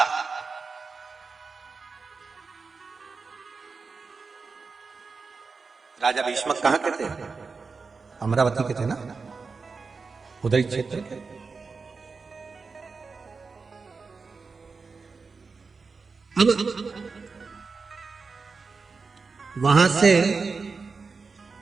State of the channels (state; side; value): quieter; left; 4.6 dB